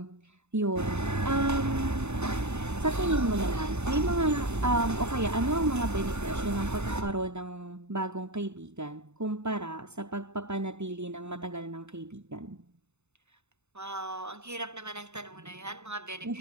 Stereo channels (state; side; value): late; left; 0.82 ms